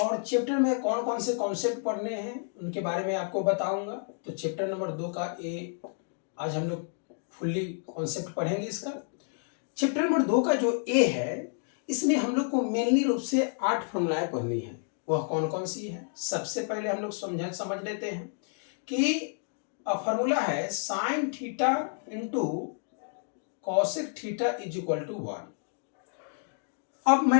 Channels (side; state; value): right; silent; 58 dB below the other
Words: चैप्टर में कौन कौन से कॉन्सेप्ट पढ़ने हैं उनके बारे में आपको बताऊंगा। तो चैप्टर नंबर 2 का ए आज हम लोग फुल्ली कॉन्सेप्ट पढ़ेंगे इसका। चैप्टर नंबर 2 का जो ए है इसमें हम लोग को मेनली रूप से 8 फॉर्मूलाएं पढ़नी है। वह कौन कौन सी है? सबसे पहले हम लोग समझ लेते हैं कि फॉर्मूला है sine theta into cosec theta is equal to 1। अब